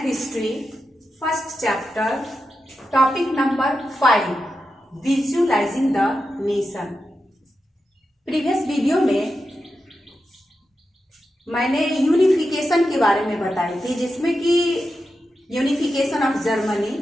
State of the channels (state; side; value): normal; both; correlation 0.89